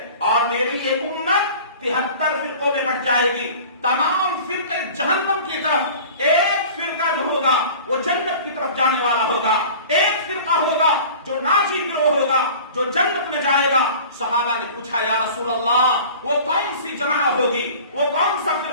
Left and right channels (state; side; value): inverted; both; correlation -0.42